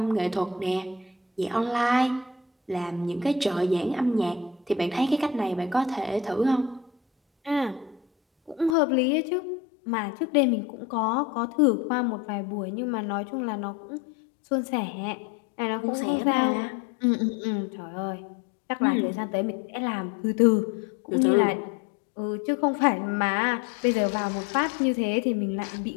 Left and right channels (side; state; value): right; drops out; at 8.8 s